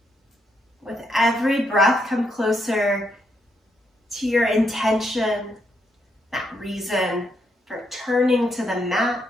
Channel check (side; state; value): both; normal; correlation 0.77